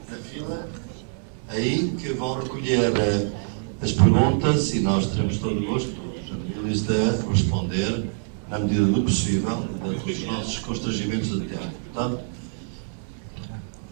fila, aí que vão recolher as perguntas e nós teremos todo o gosto de responder na medida do possível, dentro dos nossos constrangimentos de tempo. Portanto,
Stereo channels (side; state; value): left; silent; 62 dB below the other